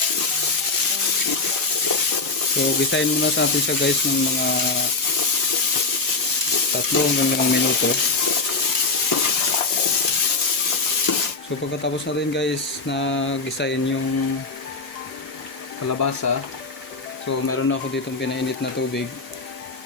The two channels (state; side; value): quieter; right; 4.1 dB